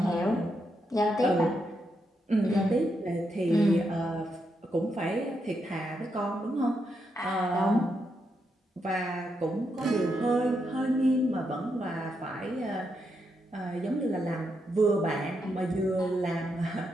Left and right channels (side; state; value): both; normal; correlation 0.82